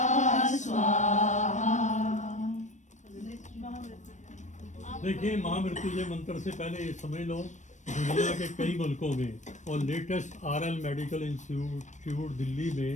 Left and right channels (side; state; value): right; late; 0.35 ms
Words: स्वाहा। देखिए, महामृत्युंजय मंत्र से पहले ये समझ लो, दुनिया के कई मुल्कों में और latest RL medical institute Delhi में